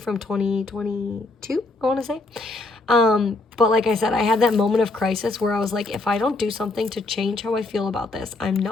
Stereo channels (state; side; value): quieter; right; 3.2 dB